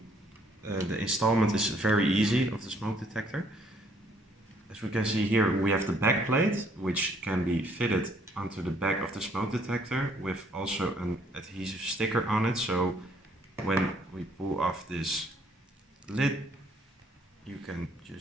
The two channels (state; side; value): normal; both; correlation 0.64